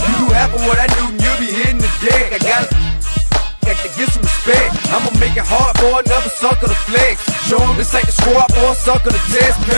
you do half of what I do, you'll be hitting the deck. I got to get some respect. I'ma make it hard for another sucker to flex. Show him this ain't the squad for a sucker to test.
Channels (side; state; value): both; inverted; correlation -1.00